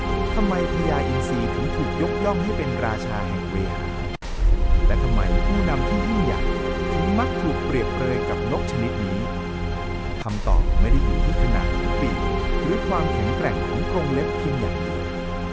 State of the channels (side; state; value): both; identical; correlation 1.00